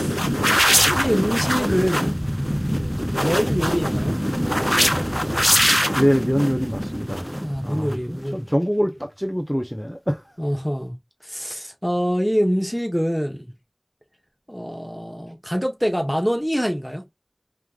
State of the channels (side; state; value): both; identical; correlation 1.00